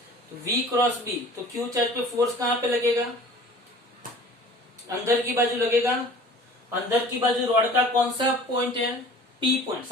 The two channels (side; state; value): both; normal; correlation 0.45